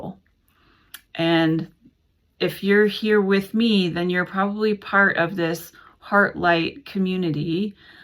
And if you're here with me, then you're probably part of this heart light community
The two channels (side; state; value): both; identical; correlation 1.00